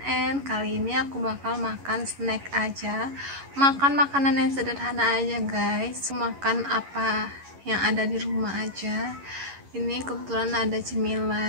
Kali ini aku bakal makan snack aja, makan makanan yang sederhana aja guys. Makan apa yang ada di rumah aja. Ini kebetulan ada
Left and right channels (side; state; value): left; late; 11 ms